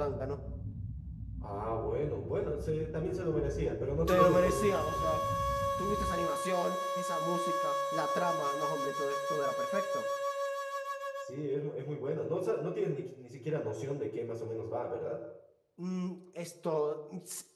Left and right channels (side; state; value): both; identical; correlation 1.00